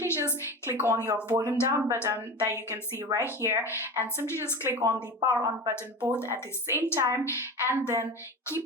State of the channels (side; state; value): both; normal; correlation 0.29